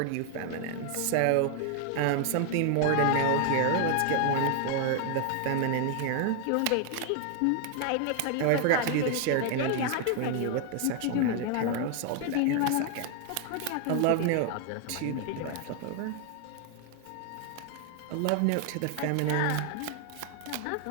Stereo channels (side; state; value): both; different; correlation 0.00